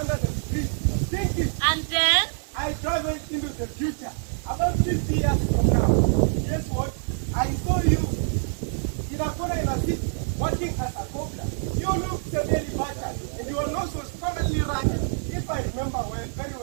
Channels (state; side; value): silent; left; digital silence